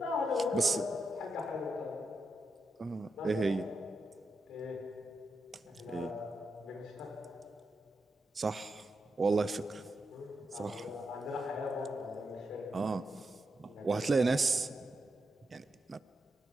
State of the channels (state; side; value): normal; both; correlation 0.85